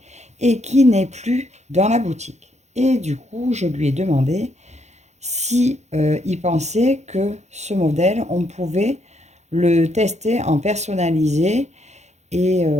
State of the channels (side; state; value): left; late; 0.33 ms